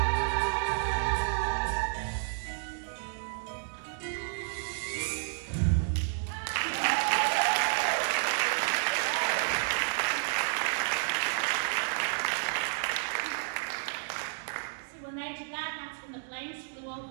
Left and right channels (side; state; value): left; silent; digital silence